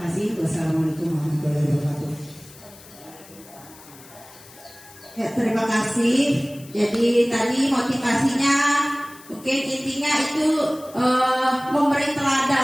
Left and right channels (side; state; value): left; noise; hiss, 21 dB below the sound